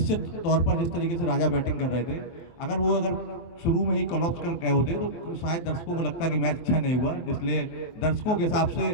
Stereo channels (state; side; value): late; right; 24 ms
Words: तौर पर जिस तरीके से राजा बैटिंग कर रहे थे, अगर शुरू में ही कॉलअप्स कर गए होते तो शायद दर्शकों को लगता कि मैच अच्छा नहीं हुआ। इसलिए दर्शकों के हिसाब से